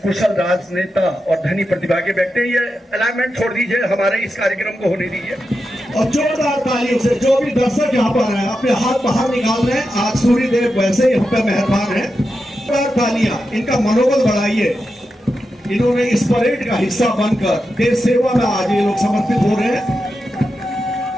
कुशल राजनेता और धनी प्रतिभा के व्यक्ति, ये अलाइनमेंट छोड़ दीजिए, हमारे इस कार्यक्रम को होने दीजिए। और जोरदार तालियों से जो भी दर्शक यहाँ पर हैं अपने हाथ बाहर निकाल रहे हैं, आज सूर्यदेव वैसे ही हम पे मेहरबान हैं। जोरदार तालियां, इनका मनोबल बढ़ाइए। इन्होंने इस परेड का हिस्सा बनकर देश सेवा में आज ये लोग समर्पित हो रहे हैं।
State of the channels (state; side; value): normal; both; correlation 0.89